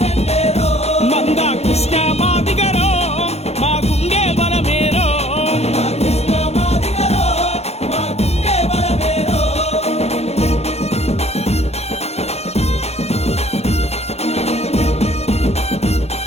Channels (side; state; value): right; late; 0.31 ms